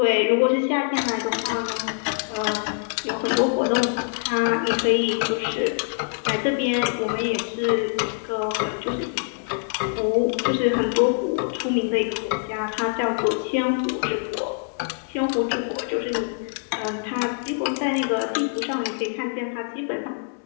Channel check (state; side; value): silent; right; 61 dB below the other